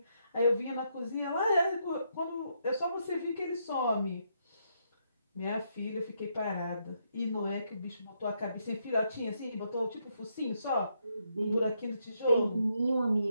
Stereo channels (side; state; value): both; inverted; correlation -0.78